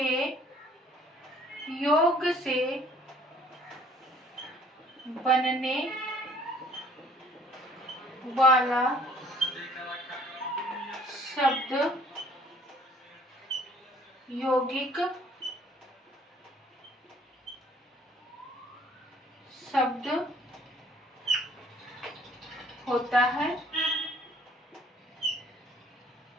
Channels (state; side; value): normal; both; correlation 0.57